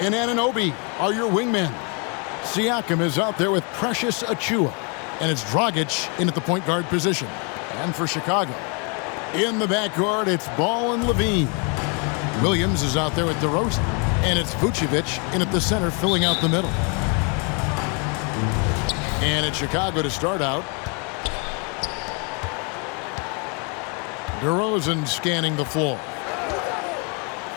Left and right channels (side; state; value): right; quieter; 35.1 dB